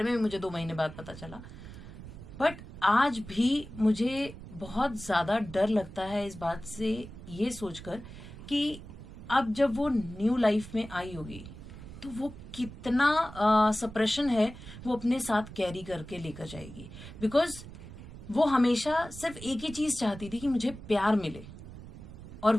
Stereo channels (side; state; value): right; noise; rumble, 14 dB below the sound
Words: में मुझे 2 महीने बाद पता चला. बट आज भी मुझे बहुत ज़्यादा डर लगता है इस बात से, ये सोचकर कि अब जब वो न्यू लाइफ में आई होगी तो वो कितना सप्रेशन है वो अपने साथ कैरी करके लेकर जाएगी. बिकॉज वो हमेशा सिर्फ एक ही चीज चाहती थी कि मुझे प्यार मिले, और